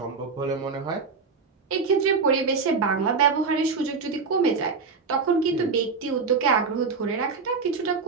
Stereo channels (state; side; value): quieter; left; 4.9 dB